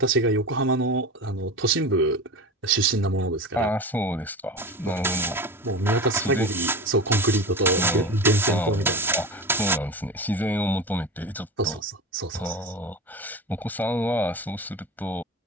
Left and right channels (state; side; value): normal; both; correlation 0.28